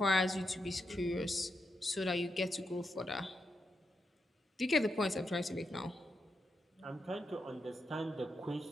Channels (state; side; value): normal; both; correlation 0.84